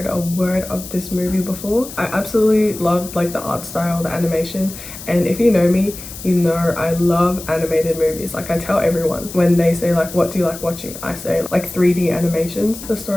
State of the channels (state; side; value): noise; left; hiss, 13 dB below the sound